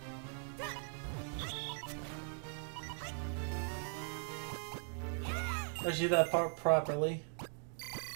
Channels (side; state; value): left; silent; 51 dB below the other